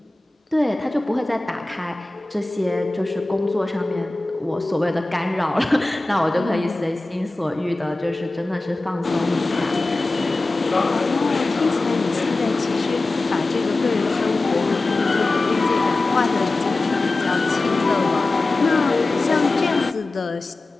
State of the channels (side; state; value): right; quieter; 3.0 dB